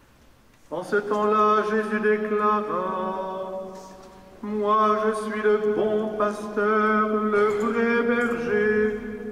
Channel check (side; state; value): both; identical; correlation 1.00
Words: En ce temps-là, Jésus déclara: Moi, je suis le bon pasteur, le vrai berger,